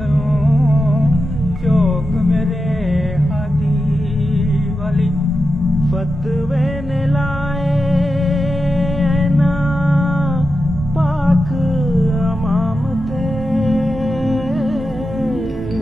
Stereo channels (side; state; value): both; normal; correlation 0.90